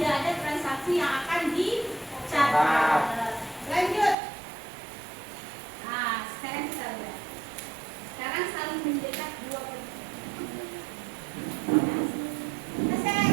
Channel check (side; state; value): left; drops out; at 4.2 s